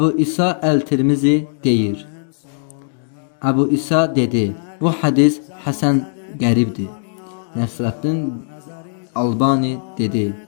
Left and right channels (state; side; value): silent; right; digital silence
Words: İsa Əl-Tirmizi deyir: Əbu İsa dedi: Bu hədis həsən qəribdir. Nəsrəddin Albani dedi: